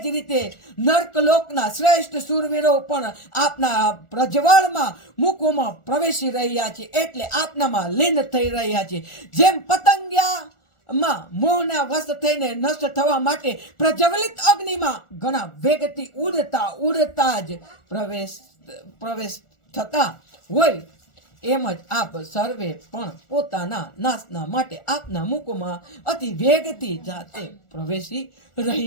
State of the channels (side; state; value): right; late; 1.4 ms